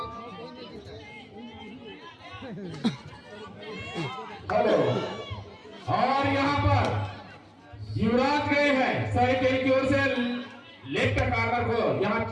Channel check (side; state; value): both; identical; correlation 1.00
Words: हेलो, और यहाँ पर युवराज गए हैं सरेकेल की ओर से लेफ्ट कार्नर को यहाँ